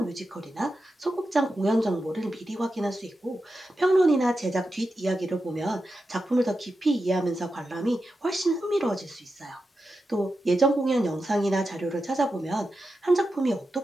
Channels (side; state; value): both; normal; correlation 0.90